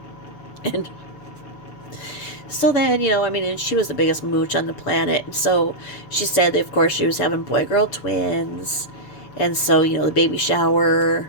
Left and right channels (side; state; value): right; late; 7.0 ms